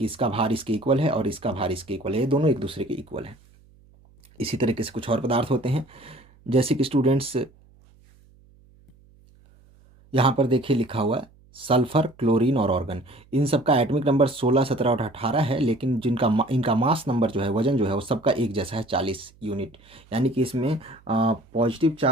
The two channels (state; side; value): noise; right; hum, 28 dB below the sound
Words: इसका भार इसके इक्वल है और इसका भार इसके इक्वल है, ये दोनों एक दूसरे के इक्वल है। इसी तरीके से कुछ और पदार्थ होते हैं, जैसे कि स्टूडेंट्स यहाँ पर देखिए लिखा हुआ है सल्फर, क्लोरीन और ऑर्गन। इन सब का एटॉमिक नंबर 16 17 और 18 है, लेकिन इनका मास नंबर जो है, वजन जो है, वो सबका एक जैसा है, 40 यूनिट। यानी कि इसमें पॉजिटिव